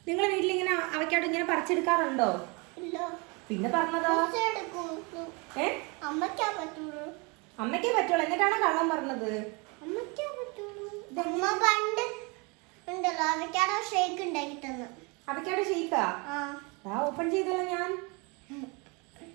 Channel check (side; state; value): left; quieter; 29.9 dB